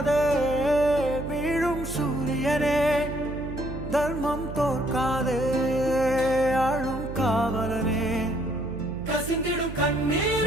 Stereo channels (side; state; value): right; noise; hum, 9 dB below the sound